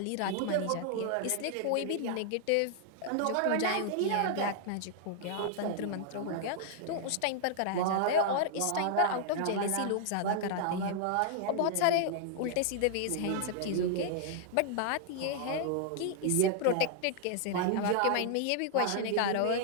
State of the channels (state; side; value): different; both; correlation -0.01